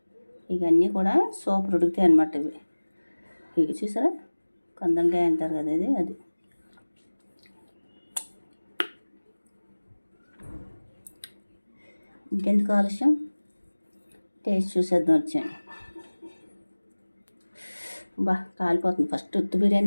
ఇవన్నీ కూడా సూపర్ ఉడుకుతాయి అన్నమాట. ఇవి చూసారా కందంకాయ అంటారు కదా ఇది, అది ఇంకెందుకు ఆలస్యం టేస్ట్ చూసేద్దాం వచ్చాను. కాలిపోతుంది. ఫస్ట్ ఉత్తి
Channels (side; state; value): both; inverted; correlation -1.00